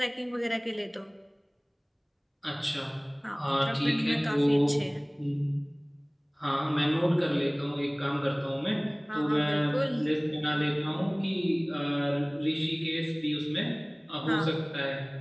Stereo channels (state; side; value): identical; both; correlation 1.00